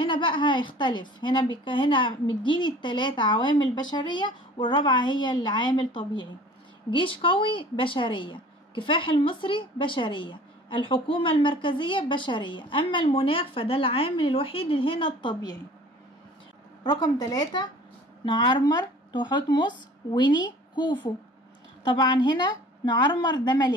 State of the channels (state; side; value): normal; both; correlation 0.47